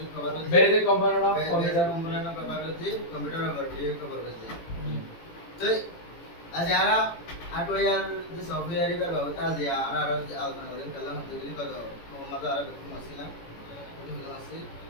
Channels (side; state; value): right; late; 18 ms